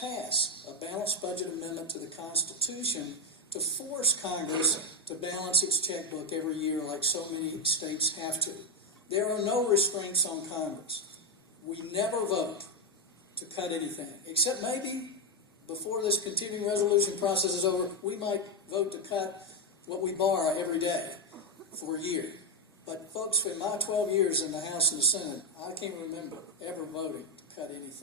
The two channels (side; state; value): both; normal; correlation 0.07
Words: a balanced budget amendment to the Constitution to force Congress to balance its checkbook every year like so many states have to. There are no restraints on Congress. We never vote to cut anything, except maybe before this continuing resolution process is over, we might vote to cut what we borrow every day for a year. But folks, in my 12 years in the House and the Senate, I can't remember ever voting to cut